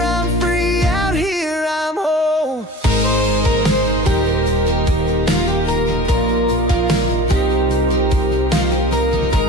free, out here I'm whole.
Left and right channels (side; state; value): both; normal; correlation 0.39